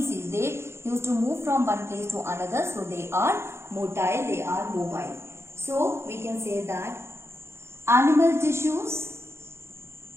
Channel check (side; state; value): left; late; 0.13 ms